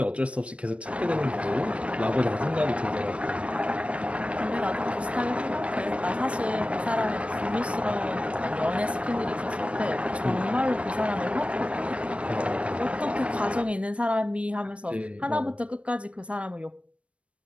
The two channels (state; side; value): late; left; 0.062 ms